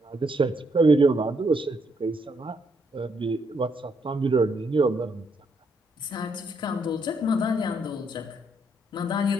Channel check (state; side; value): normal; both; correlation 0.74